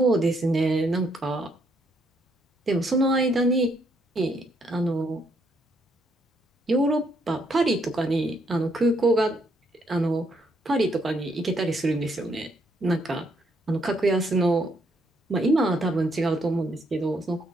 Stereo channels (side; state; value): both; normal; correlation 0.73